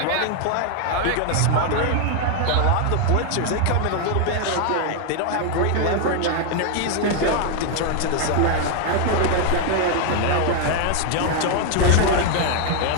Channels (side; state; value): both; different; correlation 0.00